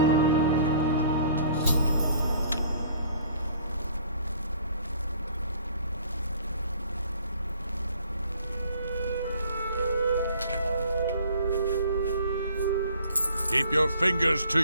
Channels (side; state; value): both; inverted; correlation -0.55